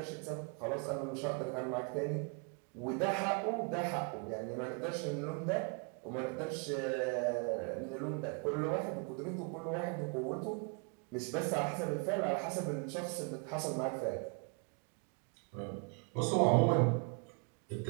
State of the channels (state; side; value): quieter; left; 36.5 dB